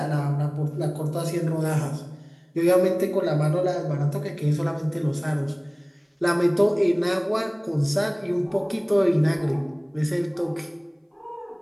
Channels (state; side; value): identical; both; correlation 1.00